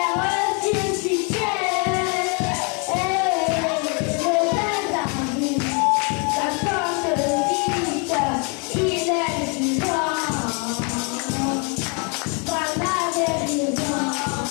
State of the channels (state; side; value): quieter; right; 34.5 dB